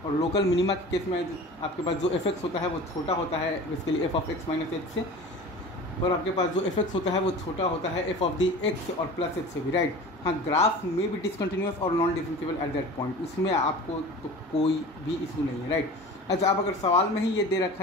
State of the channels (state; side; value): normal; both; correlation 0.37